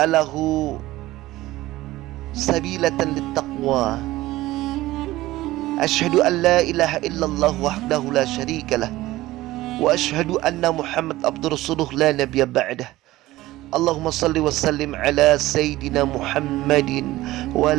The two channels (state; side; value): quieter; left; 17.1 dB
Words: sabilatan littaqwa. Asyhadu an la ilaha illallah wahdahu la syarikalah wa asyhadu anna Muhammad abdur rasuluh la nabiyya ba'dah. Allahumma salli wa sallim ala Sayyidina Muhammadin wa